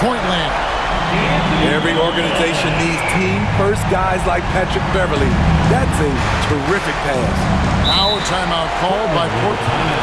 land. Every organization needs team-first guys like Patrick Beverley. That's a terrific pass. Now timeout called by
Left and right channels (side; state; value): both; identical; correlation 1.00